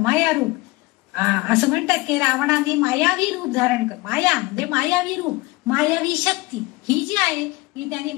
रूप. असं म्हणतात की रावणाने मायावी रूप धारण कर. माया म्हणजे मायावी रूप, मायावी शक्ती ही जी आहे ही त्यांनी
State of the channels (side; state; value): right; quieter; 21.9 dB